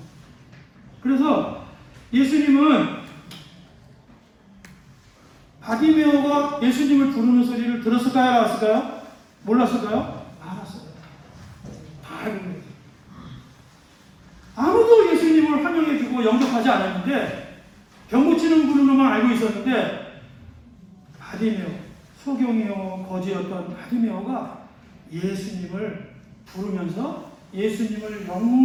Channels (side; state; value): both; identical; correlation 1.00